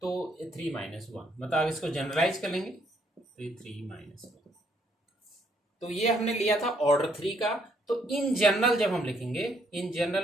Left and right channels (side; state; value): both; normal; correlation 0.70